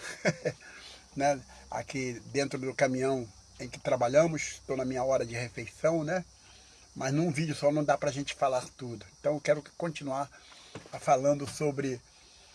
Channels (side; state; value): both; identical; correlation 1.00